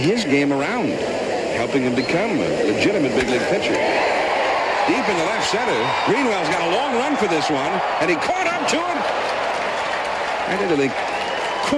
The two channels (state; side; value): identical; both; correlation 1.00